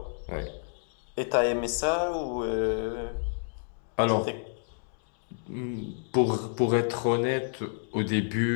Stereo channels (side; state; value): right; silent; digital silence